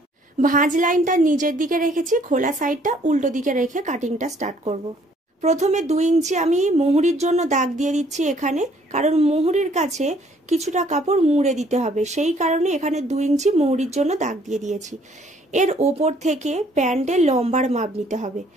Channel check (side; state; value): both; normal; correlation 0.62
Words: ভাঁজ লাইনটা নিচের দিকে রেখেছি, খোলা সাইডটা উল্টো দিকে রেখে কাটিংটা স্টার্ট করব। প্রথমে 2 ইঞ্চি আমি মুহুরির জন্য দাগ দিয়ে দিচ্ছি এখানে, কারণ মুহুরির কাছে কিছুটা কাপড় মুড়ে দিতে হবে, সেই কারণে এখানে 2 ইঞ্চি মুহুরির জন্য দাগ দিয়ে দিয়েছি। এর ওপর থেকে প্যান্টের লম্বার মাপ নিতে হবে,